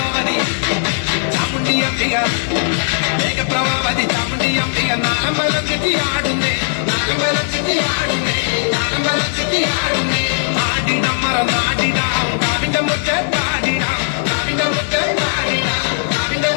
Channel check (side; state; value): right; silent; 65 dB below the other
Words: ചാമുണ്ടി അമ്പിക മേഘപ്രഭാവതി ചാമുണ്ടി അമ്പിക നാളം വലച്ചെത്തി ആടുന്നേ നാളം വലച്ചെത്തി ആടുന്നേ നാളം വലച്ചെത്തി ആടുന്നേ പാടിടമ്മറ നാടിടാം കാവിന്റെ മുറ്റ പാടിടാം കാവിന്റെ മുറ്റ പാടിടാം കാവിന്റെ